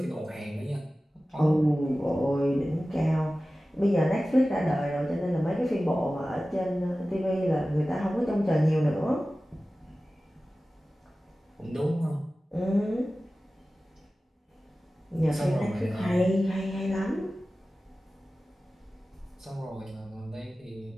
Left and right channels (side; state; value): both; normal; correlation 0.96